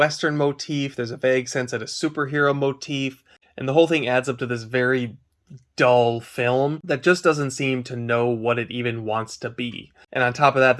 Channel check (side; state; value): both; identical; correlation 1.00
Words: motif, there's a vague sense at a superhero motif, and the whole thing adds up to this very dull film that just doesn't seem to know what it even wants to be. And on top of that,